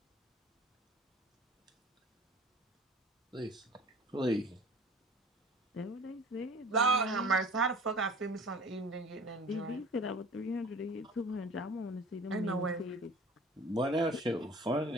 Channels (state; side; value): normal; both; correlation 0.45